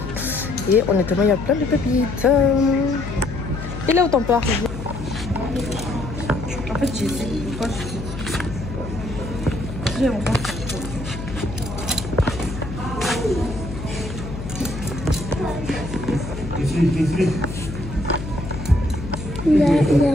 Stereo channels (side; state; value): left; noise; hum, 9 dB below the sound